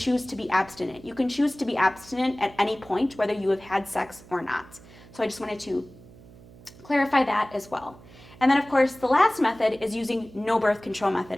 to be abstinent. You can choose to be abstinent at any point, whether you have had sex or not. So I just wanted to clarify that as well. And then of course, the last method is using no birth control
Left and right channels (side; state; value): right; noise; hum, 21 dB below the sound